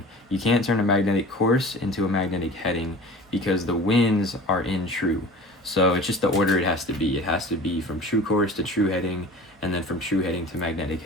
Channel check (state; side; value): normal; both; correlation 0.39